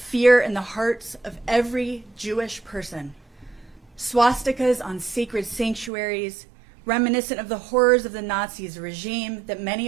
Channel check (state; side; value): drops out; left; at 5.9 s